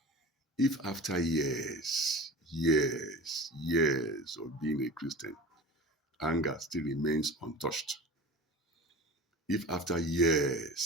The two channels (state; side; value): normal; both; correlation 0.36